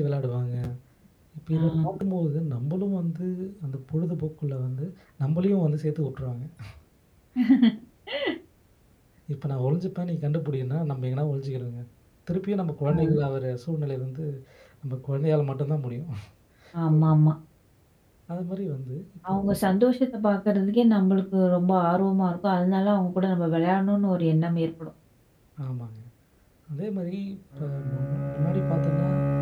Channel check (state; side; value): identical; both; correlation 1.00